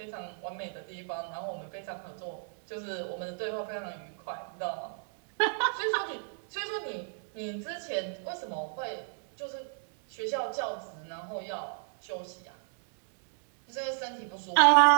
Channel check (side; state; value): left; silent; 56 dB below the other